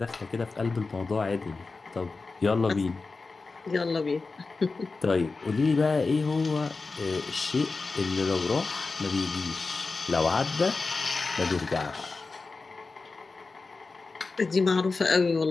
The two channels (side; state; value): right; quieter; 4.0 dB